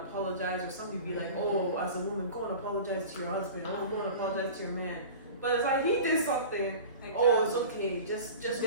apologize or somebody be like, oh, as a woman, go and apologize to your husband, oh, go and apologize to your man. But it's like he did something. Oh, it's okay. Just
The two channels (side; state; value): both; inverted; correlation -0.37